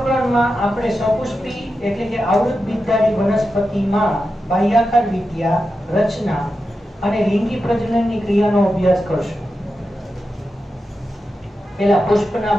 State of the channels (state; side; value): normal; both; correlation 0.90